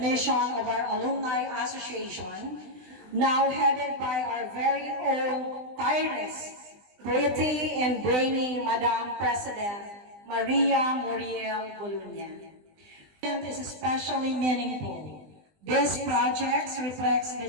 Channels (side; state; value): left; late; 20 ms